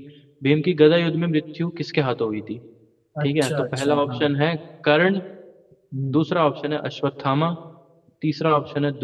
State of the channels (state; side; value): identical; both; correlation 1.00